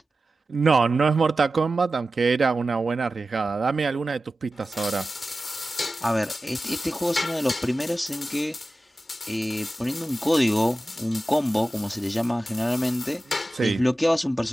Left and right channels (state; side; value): normal; both; correlation 0.95